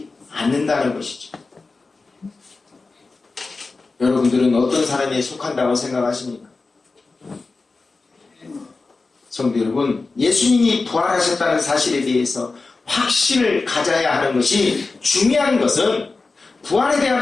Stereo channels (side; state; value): right; quieter; 3.9 dB